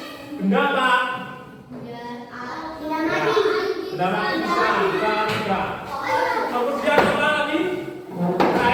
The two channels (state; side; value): identical; both; correlation 1.00